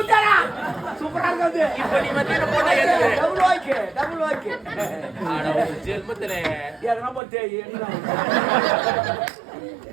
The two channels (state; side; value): drops out; left; at 7.2 s